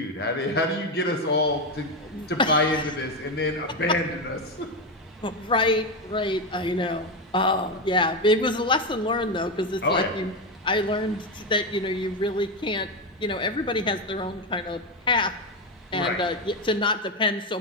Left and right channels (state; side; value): normal; both; correlation 0.12